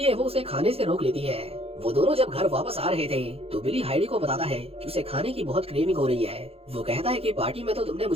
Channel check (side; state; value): left; late; 0.28 ms